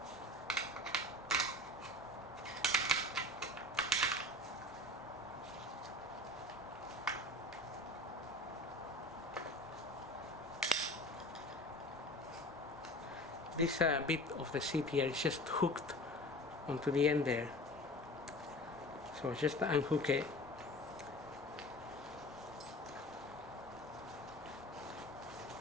This bit of the seat here is just hooked onto the end there, so just unhook it.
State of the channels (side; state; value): both; normal; correlation 0.37